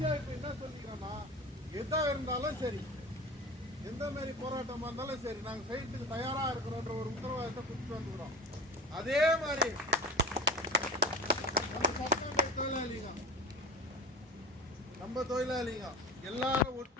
இப்போ என்ன சொல்லிக்கிறோன்னா, எதாக இருந்தாலும் சரி, எந்த மாதிரி போராட்டமாக இருந்தாலும் சரி, நாங்கள் செய்யறதுக்கு தயாராக இருக்கிறோன்ற ஒரு உத்தரவாதத்தை கொடுத்துட்டு வந்துக்கிறோம். அதே மாதிரி நம்ம தொழிலாளிங்க எல்லாரும்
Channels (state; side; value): normal; both; correlation 0.31